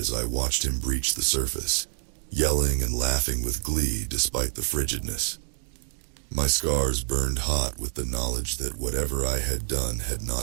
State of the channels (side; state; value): left; silent; digital silence